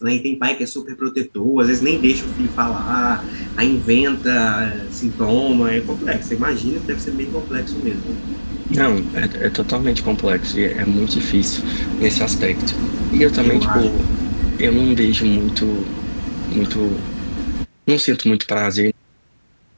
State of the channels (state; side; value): inverted; both; correlation -1.00